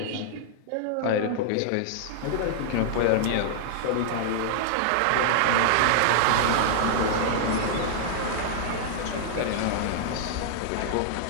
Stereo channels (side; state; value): both; different; correlation -0.01